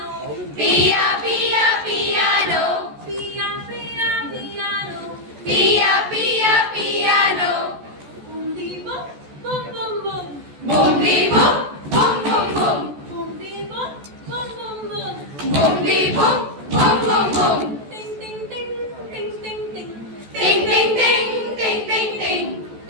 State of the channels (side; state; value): left; late; 14 ms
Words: Pia, pia, piano. पिया, पिया, piano. Pia, pia, piano. Boom, dee, boom, boom, boom, boom. Boom, dee, boom, boom, boom, boom. Boom, dee, boom, boom, boom, boom. Boom, dee, boom, boom, boom, boom. Ding, ding, ding, ding, ding, ding. Ding, ding, ding, ding, ding, ding.